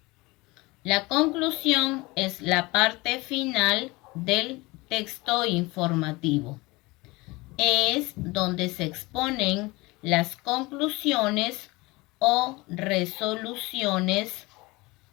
La conclusión es la parte final del texto informativo. Es donde se exponen las conclusiones o resoluciones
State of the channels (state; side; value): quieter; right; 23.0 dB